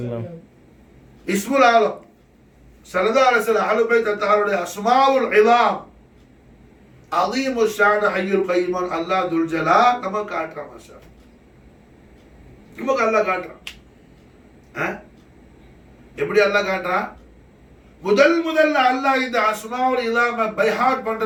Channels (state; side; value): identical; both; correlation 1.00